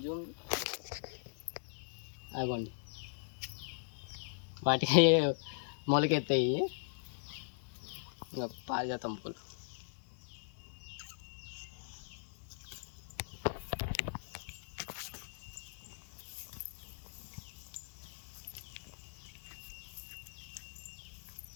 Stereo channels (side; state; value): right; silent; digital silence